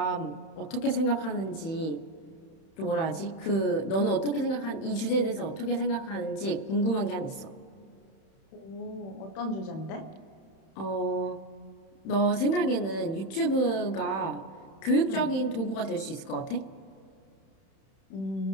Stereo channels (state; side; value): late; right; 31 ms